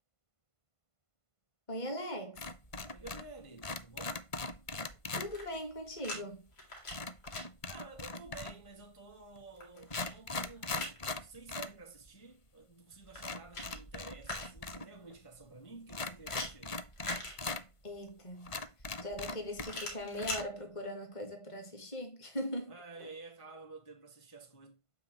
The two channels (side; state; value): right; late; 1.5 ms